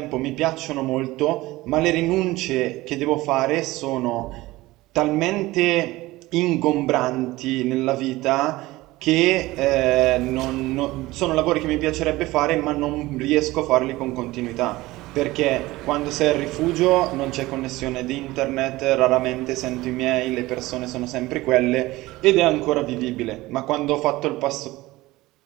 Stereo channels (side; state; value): left; quieter; 19.0 dB